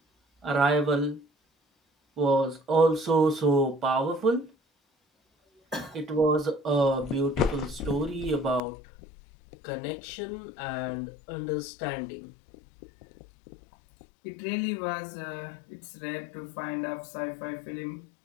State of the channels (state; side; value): drops out; right; at 8.6 s